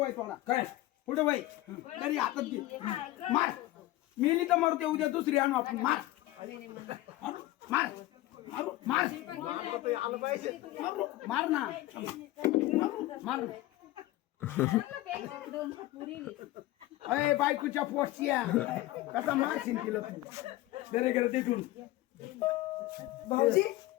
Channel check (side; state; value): right; quieter; 17.0 dB